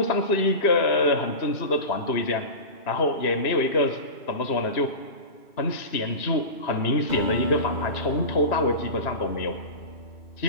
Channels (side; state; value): right; late; 3.0 ms